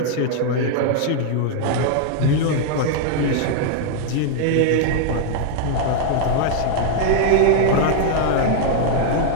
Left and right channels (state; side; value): different; both; correlation 0.00